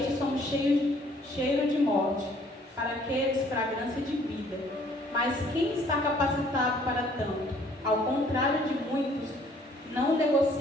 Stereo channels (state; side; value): normal; both; correlation 0.60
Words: somos cheiro de morte, para aqueles fragrância de vida. Mas quem está capacitado para tanto? Ao contrário de muitos, não